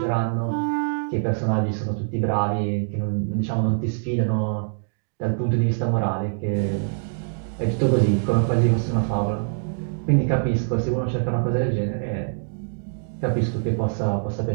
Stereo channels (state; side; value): silent; left; digital silence